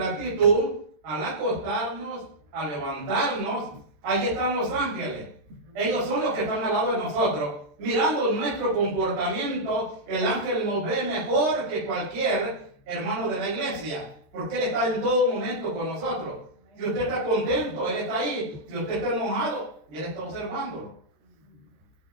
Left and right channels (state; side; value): late; left; 13 ms